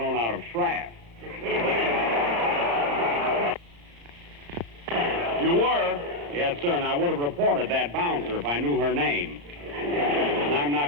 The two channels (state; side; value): late; left; 35 ms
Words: out of Schrapp. You were? Yes, sir, and I would have reported that bouncer if I knew her name. And I'm